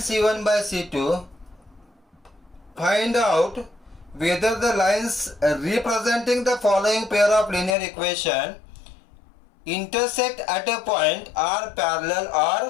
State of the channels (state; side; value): drops out; right; at 7.8 s